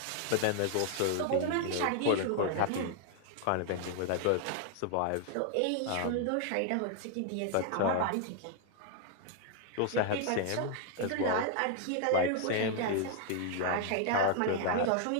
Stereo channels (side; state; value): both; different; correlation 0.00